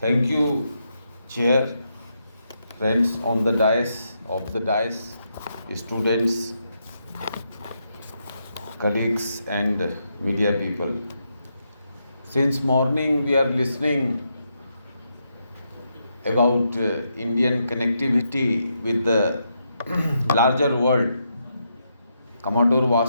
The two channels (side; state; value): both; inverted; correlation -0.81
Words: you, Chair, friends on the dais, students, colleagues and media people. Since morning we are listening about Indian connectivity with the larger world. Commodore